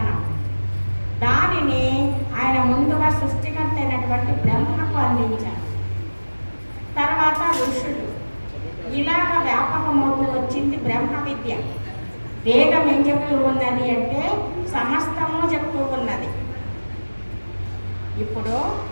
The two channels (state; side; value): inverted; both; correlation -1.00